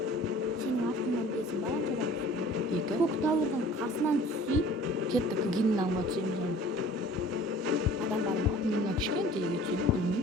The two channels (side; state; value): both; normal; correlation 0.48